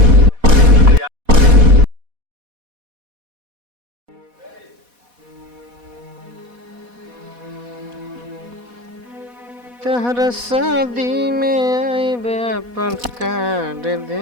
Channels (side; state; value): left; late; 4.1 ms